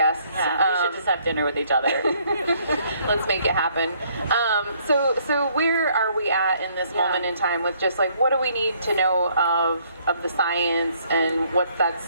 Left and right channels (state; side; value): inverted; both; correlation -0.65